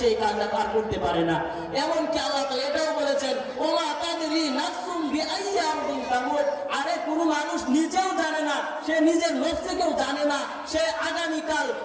কাজটা তার করতে পারে না। এমনকি আল্লাহ তাআলা এটাও বলেছেন, ওমা তাদরি নাফসুম বিআইয়ি আরদিন তামুত। আরে কোন মানুষ নিজেও জানে না, সে নিজের নফসকেও জানে না, সে আগামীকাল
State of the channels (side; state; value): both; identical; correlation 1.00